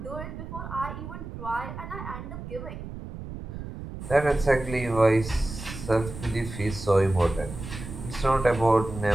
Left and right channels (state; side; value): noise; right; rumble, 10 dB below the sound